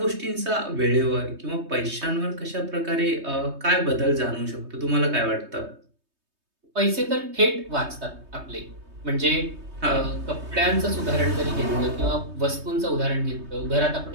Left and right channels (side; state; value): left; late; 3.2 ms